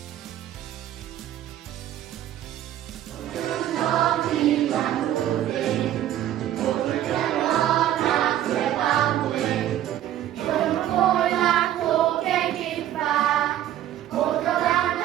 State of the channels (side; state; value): left; quieter; 12.1 dB